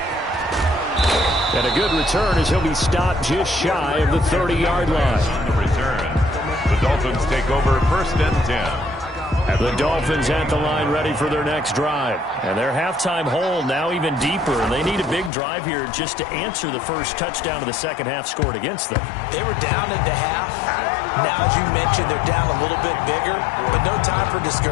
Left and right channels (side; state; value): right; drops out; at 15.3 s